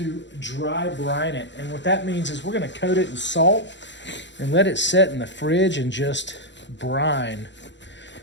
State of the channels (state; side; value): late; right; 0.52 ms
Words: dry brine it. And what that means is we're going to coat it in salt and let it set in the fridge and just brine.